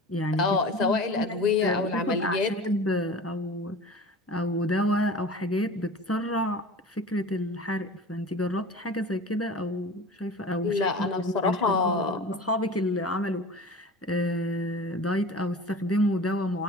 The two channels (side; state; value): both; normal; correlation 0.37